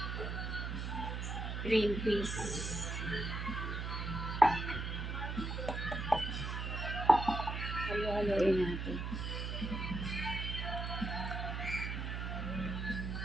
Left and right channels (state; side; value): noise; right; hum, 3 dB below the sound